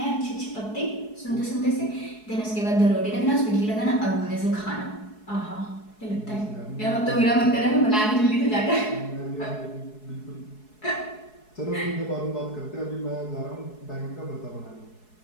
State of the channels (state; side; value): late; right; 4.7 ms